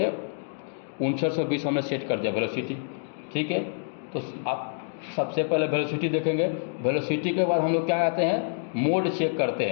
5920 हमने सेट कर दिया वेलोसिटी, ठीक है। तो आप सबसे पहले वेलोसिटी देखेंगे, वेलोसिटी के बाद हम लोग क्या आते हैं, मोड चेक करते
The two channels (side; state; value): right; silent; digital silence